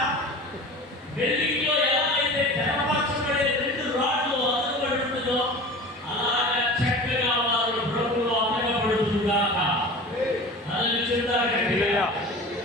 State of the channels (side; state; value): both; normal; correlation 0.37